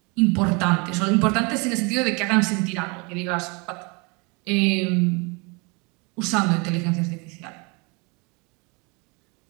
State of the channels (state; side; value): quieter; left; 29.8 dB